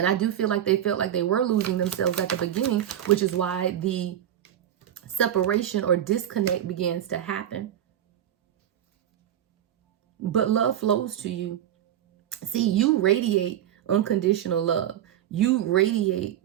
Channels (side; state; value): left; quieter; 11.0 dB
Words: I do feel like they felt like they were losing themselves at the beginning, which is why the separation or disconnect begins to happen. But love flows to you. See, you radiate unconditional love. You radiate